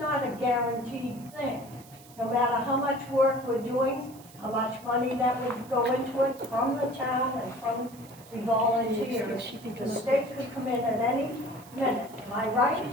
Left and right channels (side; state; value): right; noise; hiss, 22 dB below the sound